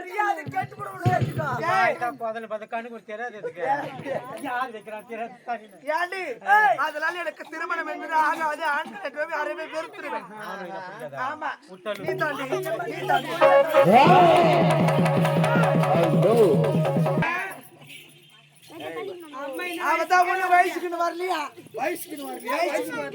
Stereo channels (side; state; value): both; identical; correlation 1.00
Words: கேட்டு அதனால எனக்கு திருமணம் என்பது ஆகாது. ஆண்கள் அறவே வெறுத்துருவேன். ஆமா நீ தாண்டி அவதான் ஒண்ணு வயசுக்குன்னு வரலையா? வயசுக்குன்னு வரலையா?